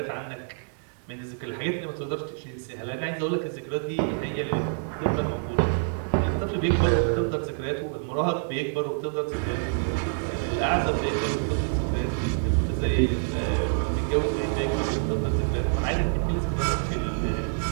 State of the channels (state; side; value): silent; left; digital silence